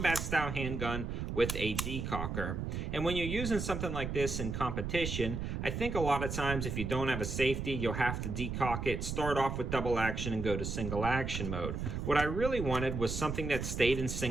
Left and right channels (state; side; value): noise; right; rumble, 4 dB below the sound